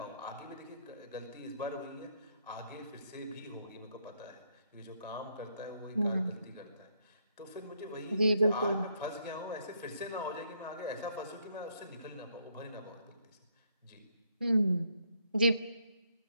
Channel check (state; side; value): inverted; both; correlation -0.73